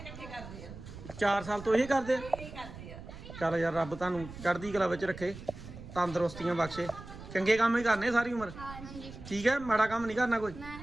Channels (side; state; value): right; noise; rumble, 14 dB below the sound